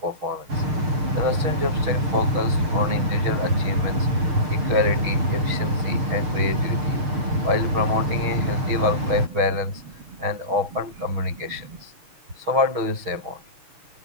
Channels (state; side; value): late; left; 6.3 ms